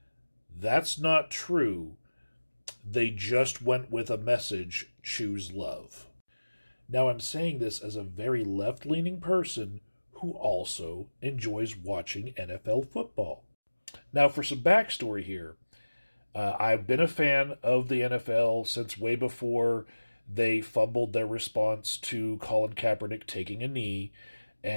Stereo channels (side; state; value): both; inverted; correlation -1.00